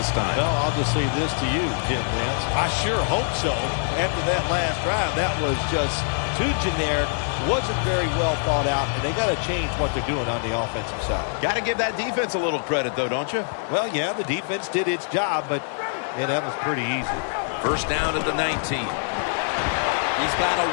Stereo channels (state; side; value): silent; right; digital silence